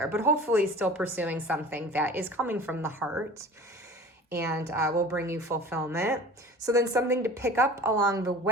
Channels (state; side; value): normal; both; correlation 0.40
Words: but hopefully still pursuing something that is coming from the heart and will bring you fulfillment. So then something to pick up along the